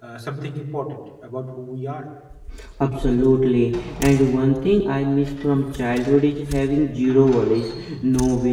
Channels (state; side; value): identical; both; correlation 1.00